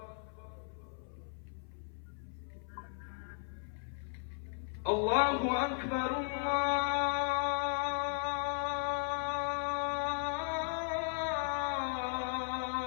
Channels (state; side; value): silent; right; 53 dB below the other